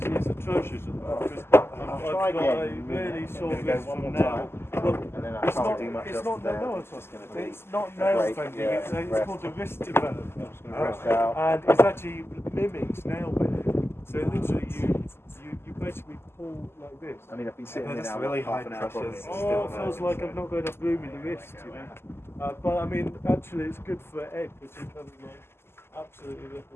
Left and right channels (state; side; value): late; right; 0.12 ms